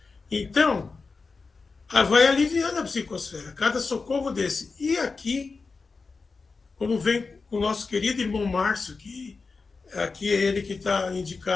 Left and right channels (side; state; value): right; quieter; 4.4 dB